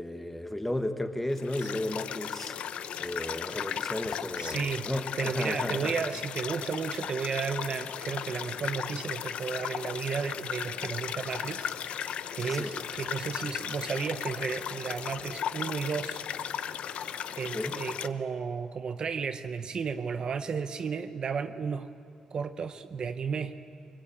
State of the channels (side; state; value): both; normal; correlation 0.69